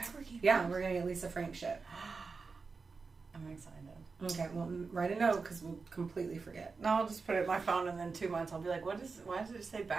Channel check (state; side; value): quieter; left; 4.6 dB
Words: Keeper. Yeah, we're gonna get Lisa Frank shit. I'm excited. Okay, well, write a note because we'll completely forget. No, I'll just put it in my phone, and then 2 months I'll be like, why does it say